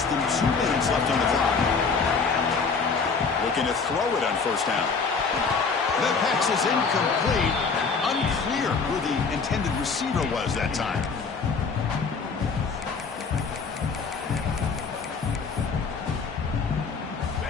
than 2 minutes left on the clock. Looking to throw it on first down. The pass is incomplete. Unclear who the intended receiver was that time.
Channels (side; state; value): right; quieter; 5.0 dB